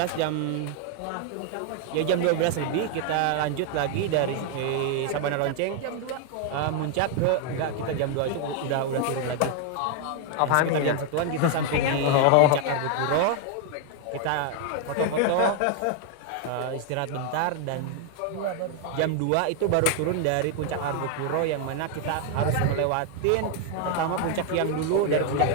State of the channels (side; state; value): both; different; correlation 0.00